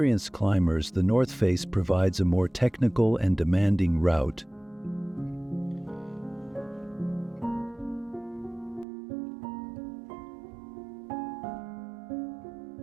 climbers, the North Face provides a more technical and demanding route.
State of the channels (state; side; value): drops out; left; at 8.8 s